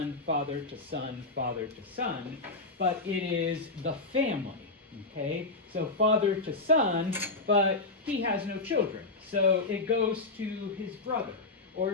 father to son, father to son, but it is the family, okay? So father to son, but he has no children. So it goes to his brother, or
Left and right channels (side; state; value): right; quieter; 3.2 dB